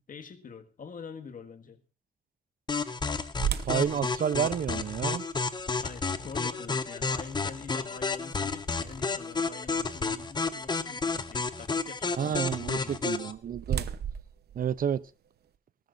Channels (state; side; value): normal; both; correlation 0.38